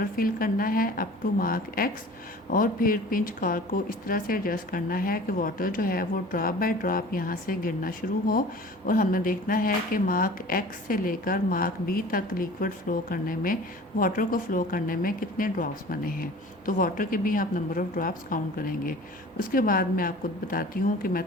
फिल करना है अप टू मार्क एक्स, और फिर पिंच कॉर्क को इस तरह से एडजस्ट करना है कि वाटर जो है वो ड्रॉप बाय ड्रॉप यहाँ से गिरना शुरू हो, और हमने देखना है कि मार्क एक्स से लेकर मार्क बी तक लिक्विड फ्लो करने में, वाटर को फ्लो करने में कितने ड्रॉप्स बने हैं। तो वाटर के भी आप नंबर ऑफ़ ड्रॉप्स काउंट करेंगे। उसके बाद मैं आपको बताती हूँ कि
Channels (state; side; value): normal; both; correlation 0.43